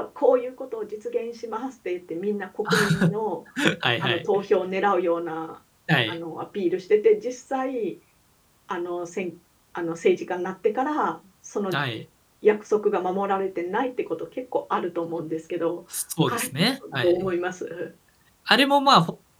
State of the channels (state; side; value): identical; both; correlation 1.00